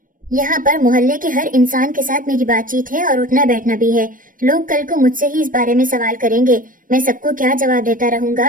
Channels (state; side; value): late; left; 0.40 ms